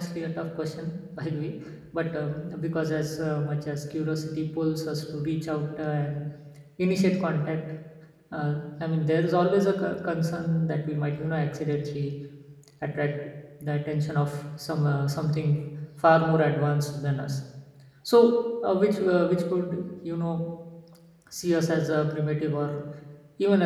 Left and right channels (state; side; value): identical; both; correlation 1.00